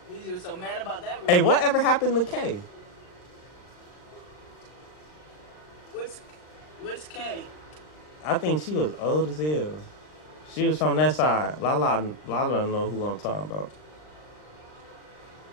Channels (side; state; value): right; late; 39 ms